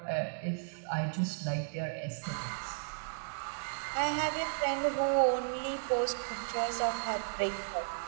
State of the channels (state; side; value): silent; left; digital silence